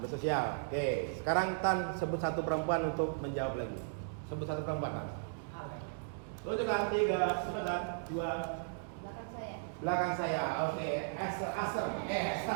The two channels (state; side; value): silent; left; digital silence